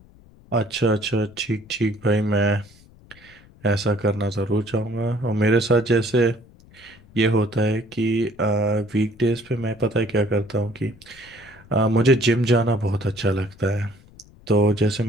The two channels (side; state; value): left; noise; rumble, 25 dB below the sound